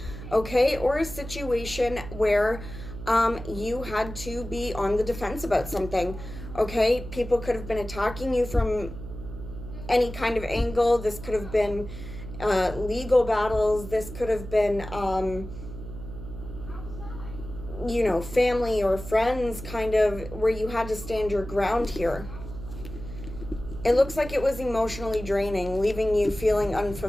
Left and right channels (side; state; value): right; noise; hum, 11 dB below the sound